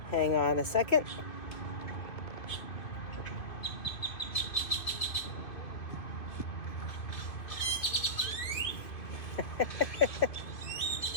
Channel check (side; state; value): right; late; 2.5 ms